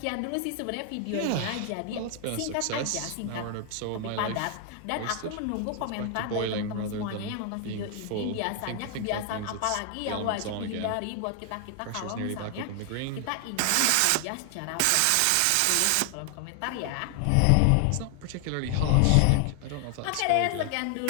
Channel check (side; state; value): both; different; correlation 0.00